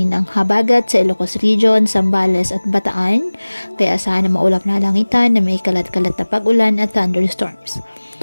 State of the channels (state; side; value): inverted; both; correlation -1.00